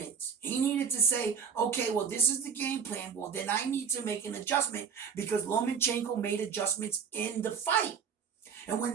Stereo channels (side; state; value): left; quieter; 6.5 dB